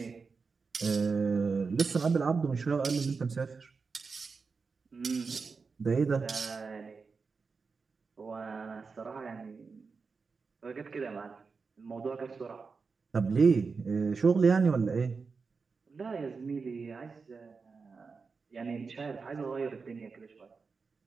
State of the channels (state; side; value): quieter; left; 4.8 dB